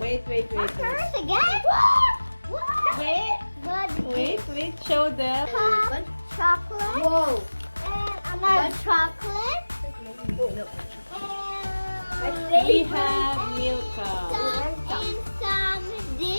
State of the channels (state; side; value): inverted; both; correlation -1.00